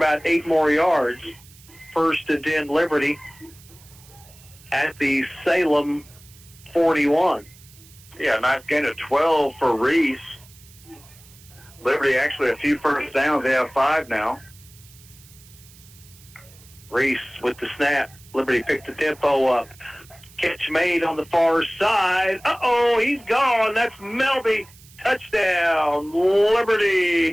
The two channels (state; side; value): noise; right; hiss, 24 dB below the sound